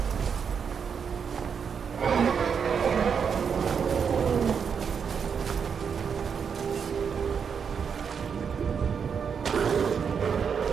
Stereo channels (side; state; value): left; quieter; 6.7 dB